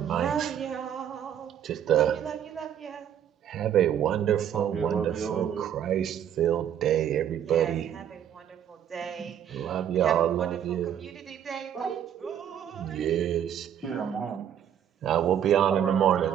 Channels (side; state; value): left; quieter; 9.6 dB